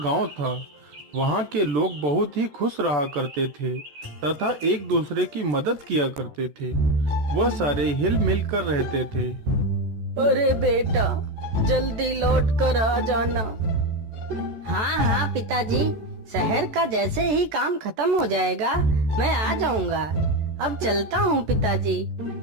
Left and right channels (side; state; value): left; late; 13 ms